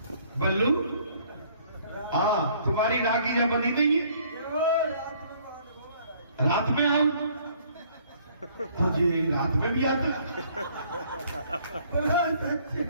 बल्लू हाँ, तुम्हारी राखी जब बनी नहीं है, रात में आओ तो जी रात में भी आता।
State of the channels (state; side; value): inverted; both; correlation -0.60